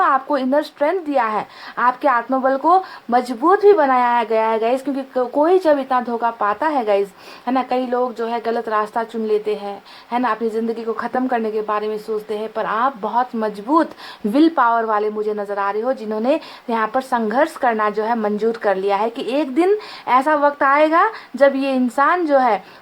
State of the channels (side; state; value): both; identical; correlation 1.00